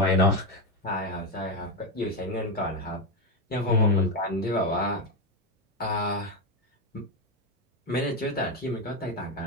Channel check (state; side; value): normal; both; correlation 0.10